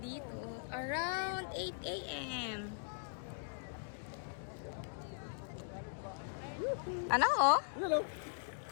dito. Around 8 a.m. Ano oh? Ilan o?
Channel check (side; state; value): right; silent; digital silence